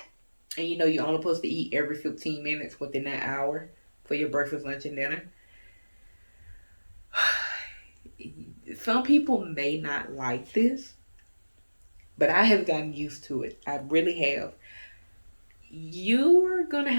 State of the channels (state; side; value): inverted; both; correlation -1.00